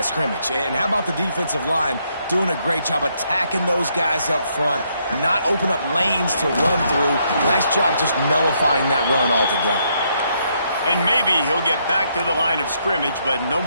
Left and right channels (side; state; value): both; inverted; correlation -0.74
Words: scrimmage. And how about the defensive line doing a great job attacking those guys up front, not open up lanes to run through. Nice job just nullifying that run altogether. And maybe he'll get back to the line of scrimmage, but no